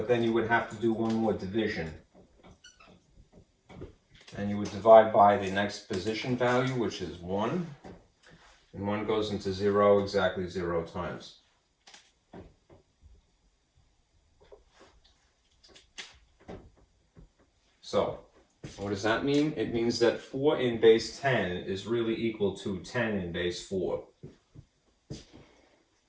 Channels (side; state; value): both; identical; correlation 1.00